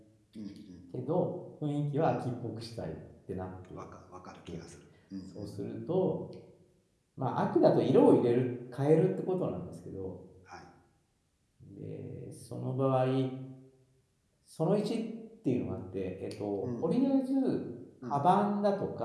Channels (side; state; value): both; identical; correlation 1.00